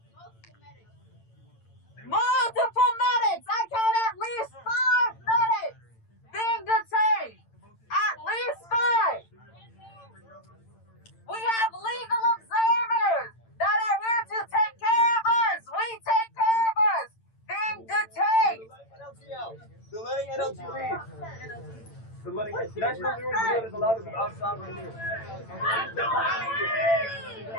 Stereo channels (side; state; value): right; late; 8.9 ms